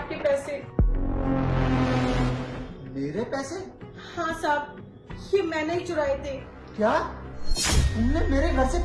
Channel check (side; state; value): both; identical; correlation 1.00